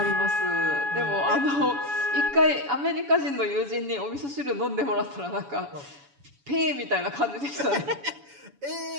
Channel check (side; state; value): left; late; 7.1 ms